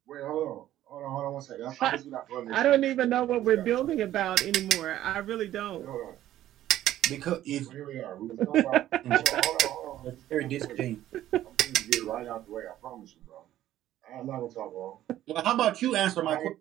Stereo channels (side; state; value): left; quieter; 13.1 dB